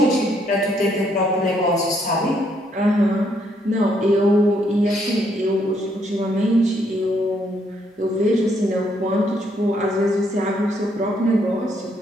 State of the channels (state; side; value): normal; both; correlation 0.71